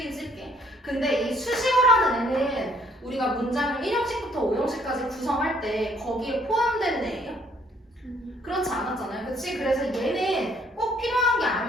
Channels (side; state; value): both; normal; correlation 0.64